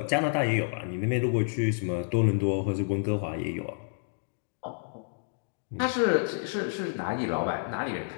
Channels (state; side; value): silent; right; digital silence